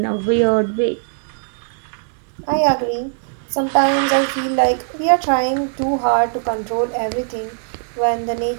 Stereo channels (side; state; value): left; silent; digital silence